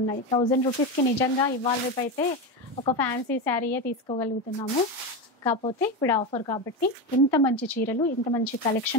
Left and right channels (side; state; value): both; normal; correlation 0.17